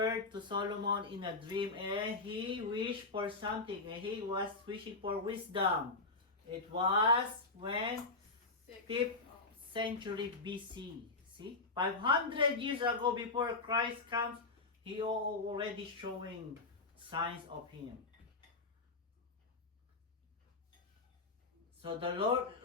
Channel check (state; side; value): quieter; right; 3.6 dB